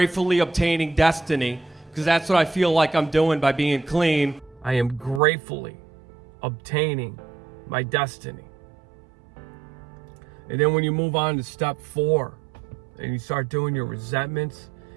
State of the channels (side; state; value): left; drops out; at 5.2 s